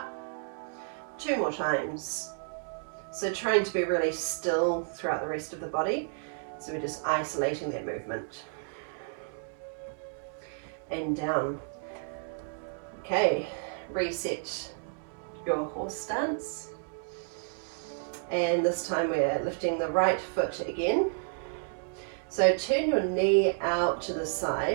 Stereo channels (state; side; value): silent; left; 57 dB below the other